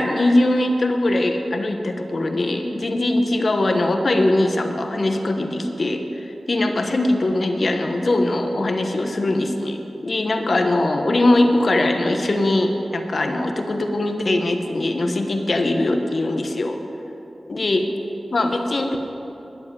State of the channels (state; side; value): normal; both; correlation 0.96